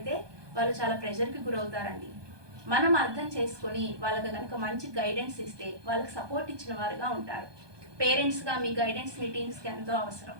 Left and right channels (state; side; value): late; left; 1.2 ms